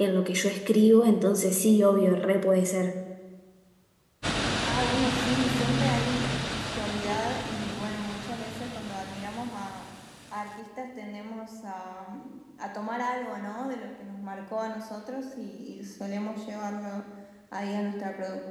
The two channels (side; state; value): both; identical; correlation 1.00